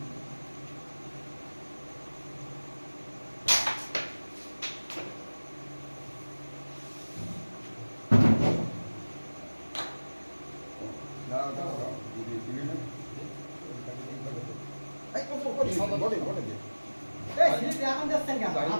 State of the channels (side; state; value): both; inverted; correlation -1.00